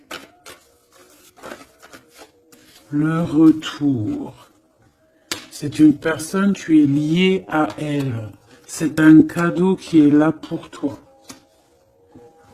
le retour, c'est une personne, tu es lié à elle. C'est un cadeau qui est là pour toi.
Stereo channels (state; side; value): identical; both; correlation 1.00